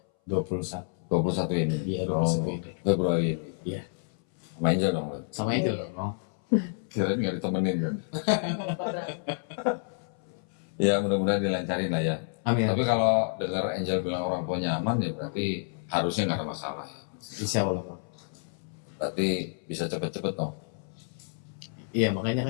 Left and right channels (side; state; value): right; silent; 58 dB below the other